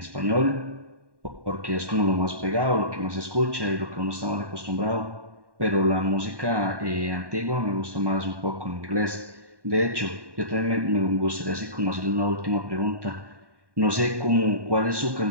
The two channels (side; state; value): left; late; 1.1 ms